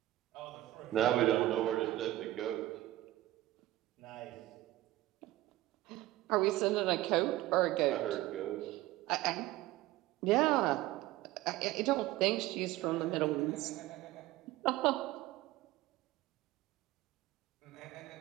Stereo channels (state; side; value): quieter; left; 16.1 dB